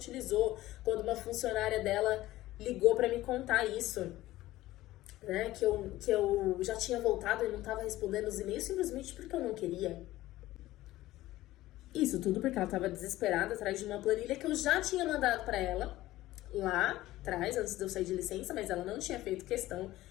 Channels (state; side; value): quieter; right; 16.3 dB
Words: quando uma funcionária dela ligou para me contar isso, né? Que eu já tinha voltado e não estava respondendo os e-mails simplesmente porque eu não queria. Isso tudo porque ela estava desesperada atrás de uma planilha que eu já tinha mandado para ela lá atrás, antes de eu sair de licença, mas ela não tinha feito questão